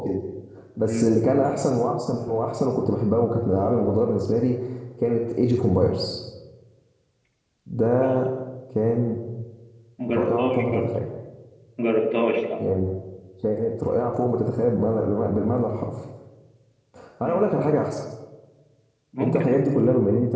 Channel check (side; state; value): both; identical; correlation 1.00